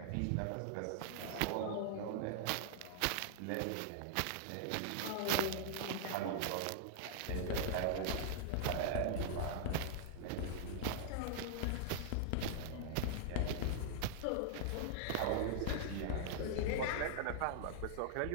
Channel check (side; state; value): both; different; correlation -0.01